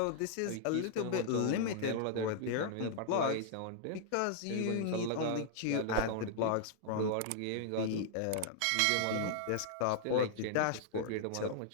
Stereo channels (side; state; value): both; different; correlation -0.01